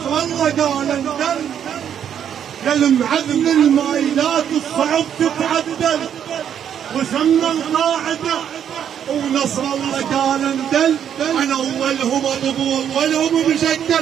الله قال انزل، يا المعلم المايلات الصعب تتعدل وسمى القاعدة ونصر الله قال اندل. انا اولهم ابو اولهم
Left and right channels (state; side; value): quieter; left; 9.0 dB